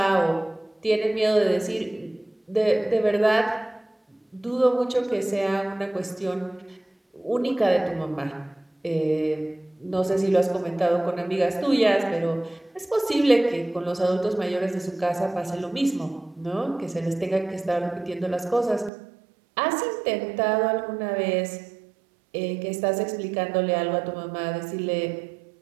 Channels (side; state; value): left; drops out; at 18.9 s